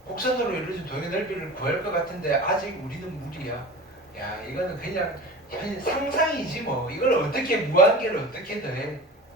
곡선으로 이루어진 동의 넓이를 구할 것 같은데 아직 우리는 무리야. 야, 이거는 그냥 상상이지 뭐. 이걸 어떻게 무한계를 어떻게 더해?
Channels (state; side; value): normal; both; correlation 0.35